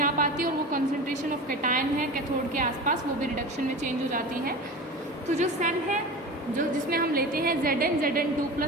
आ पाती और वो कंसंट्रेशन ऑफ कैटायन है कैथोड के आसपास वो भी रिडक्शन में चेंज हो जाती है। तो जो सेल है जो जिसमें हम लेते हैं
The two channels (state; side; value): normal; both; correlation 0.31